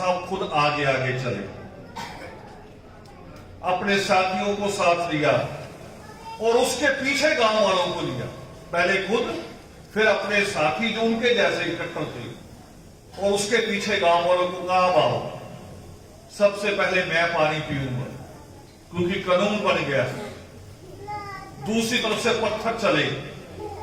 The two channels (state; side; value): identical; both; correlation 1.00